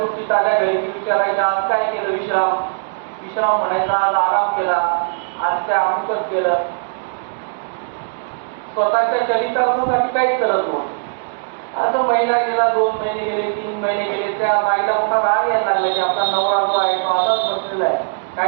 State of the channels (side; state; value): left; silent; digital silence